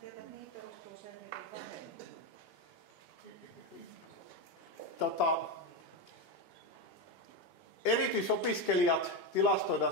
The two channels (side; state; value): right; late; 2.8 ms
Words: tietää, että mihin perustuu se, että vähemmän. Erityisopiskelijat tilastoidaan